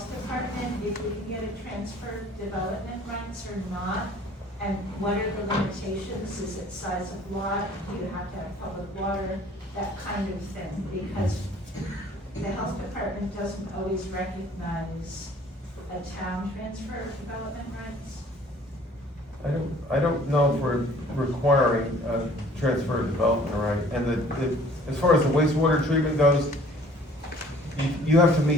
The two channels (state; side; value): normal; both; correlation 0.54